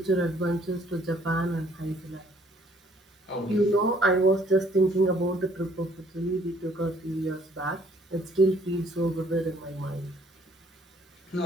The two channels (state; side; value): normal; both; correlation 0.62